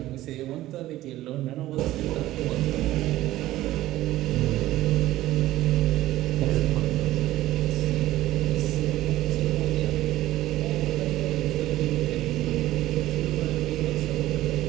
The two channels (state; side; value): quieter; left; 15.4 dB